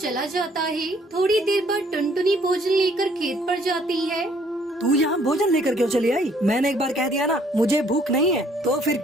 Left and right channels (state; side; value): normal; both; correlation 0.63